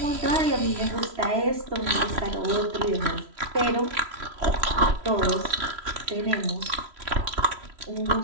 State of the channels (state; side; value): late; left; 3.0 ms